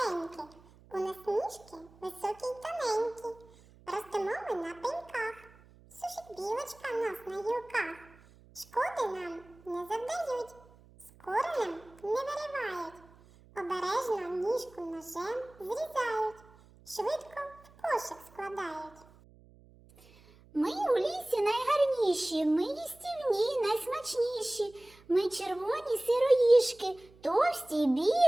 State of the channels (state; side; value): noise; right; hum, 25 dB below the sound